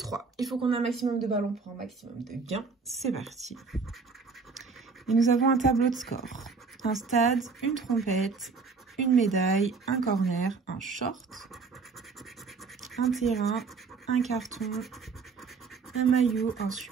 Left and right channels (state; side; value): quieter; left; 4.8 dB